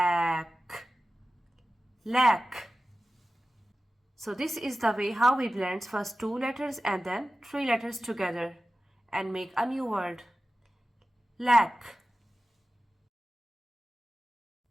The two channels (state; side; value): normal; both; correlation 0.95